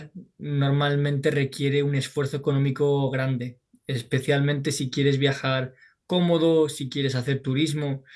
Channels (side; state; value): both; identical; correlation 1.00